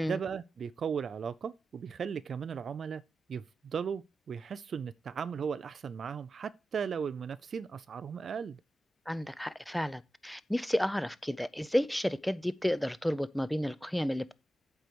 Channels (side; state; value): both; normal; correlation 0.93